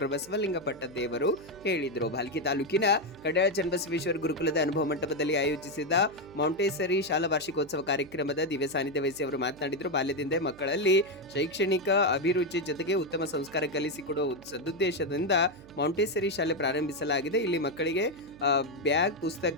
ಬಸವಲಿಂಗ ಪಟ್ಟದೇವರು ಹೇಳಿದರು. ಭಾಲ್ಕಿ ತಾಲೂಕಿನ ಕಡ್ಯಾಳ ಚನ್ನಬಸವೇಶ್ವರ ಗುರುಕುಲದ ಅನುಭವ ಮಂಟಪದಲ್ಲಿ ಆಯೋಜಿಸಿದ ಮಾಂಟೇಸರಿ ಶಾಲಾ ವಾರ್ಷಿಕೋತ್ಸವ ಕಾರ್ಯಕ್ರಮದ ದಿವ್ಯ ಸಾನ್ನಿಧ್ಯ ವಹಿಸಿ ಅವರು ಮಾತನಾಡಿದರು. ಬಾಲ್ಯದಿಂದ ಮಕ್ಕಳಲ್ಲಿ ಶೈಕ್ಷಣಿಕ ಅಭಿರುಚಿ ಜೊತೆಗೆ ಉತ್ತಮ ಸಂಸ್ಕಾರ ಕಲಿಸಿಕೊಡುವ ಸದುದ್ದೇಶದಿಂದ ಮಾಂಟೇಸರಿ ಶಾಲೆ ಪ್ರಾರಂಭಿಸಲಾಗಿದೆ. ಇಲ್ಲಿ ಮಕ್ಕಳಿಗೆ ಬ್ಯಾಗ್,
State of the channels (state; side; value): noise; right; hum, 21 dB below the sound